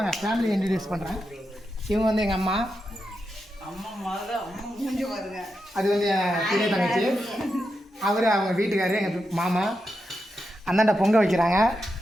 ஃபேமிலி இன்ட்ரடியூஸ் பண்ணுறேன். இவங்க வந்து எங்கள் அம்மா, அது வந்து என் பெரிய தங்கச்சி, அவர் அவங்க வீட்டுக்காரர், எங்கள் மாமா. அந்தாண்ட பொங்க வைக்கிறாங்க,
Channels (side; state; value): both; normal; correlation 0.87